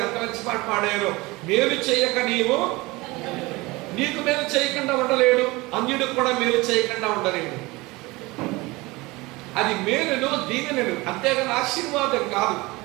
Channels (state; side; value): quieter; left; 22.4 dB